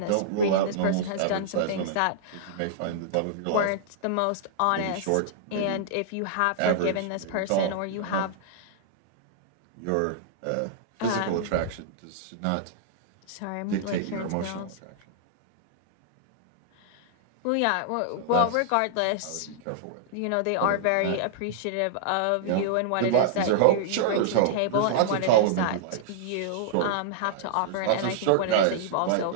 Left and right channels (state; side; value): different; both; correlation -0.02